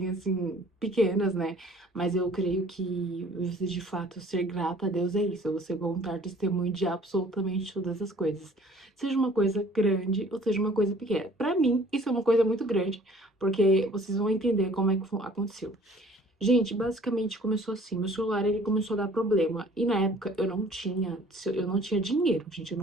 assim, pequenas, né? Mas eu creio que você de fato ser grata a Deus é isso, é você contar testemunho de absolutamente todas as coisas. Seja uma coisa grande ou seja uma coisa pequena. Pra mim, isso é uma coisa muito grande, porque vocês vão entender como é que aconteceu. Gente, basicamente começou assim, meu celular ele começou a dar problema e na época eu não tinha dinheiro, gente, eu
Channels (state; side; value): normal; both; correlation 0.53